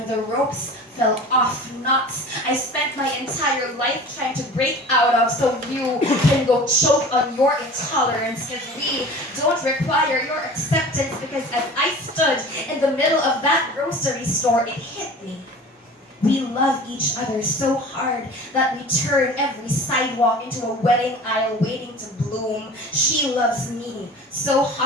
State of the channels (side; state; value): both; normal; correlation 0.40